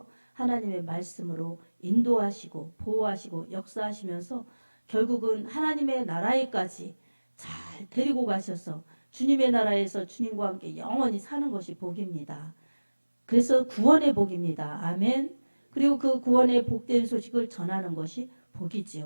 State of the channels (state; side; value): inverted; both; correlation -1.00